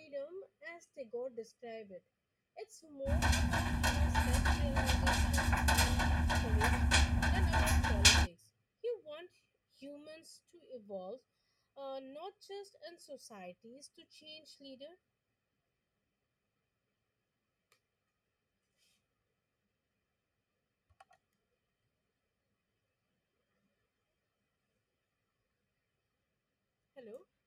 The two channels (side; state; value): both; identical; correlation 1.00